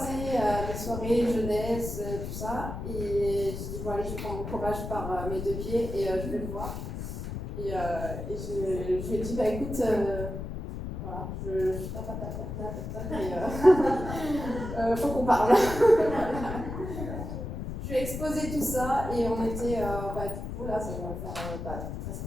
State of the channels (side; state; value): left; noise; rumble, 6 dB below the sound